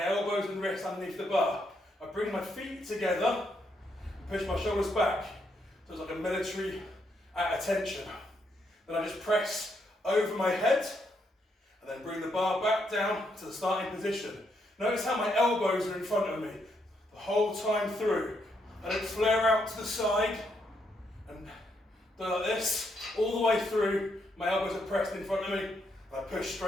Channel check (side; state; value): both; normal; correlation 0.77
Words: elbows and wrists underneath the bar. I bring my feet together and push my shoulders back. So it's like a military at attention. Then I just press over my head and then bring the bar back down to the starting position. Notice how my elbows are in front of me the whole time through. I don't flare out to the side and do like this all the way through. My elbows are pressed in front of me and I push